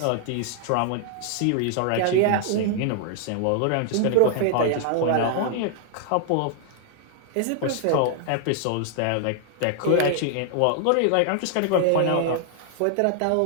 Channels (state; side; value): different; both; correlation 0.00